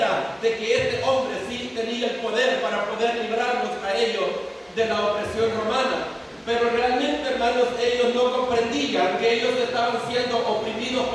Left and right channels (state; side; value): identical; both; correlation 1.00